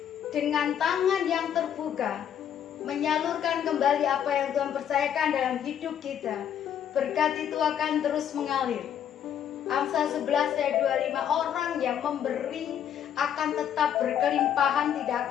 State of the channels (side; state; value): right; quieter; 9.4 dB